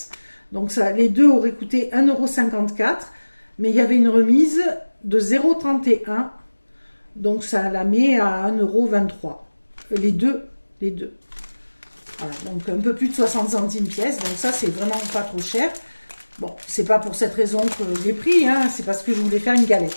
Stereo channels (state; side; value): inverted; both; correlation -1.00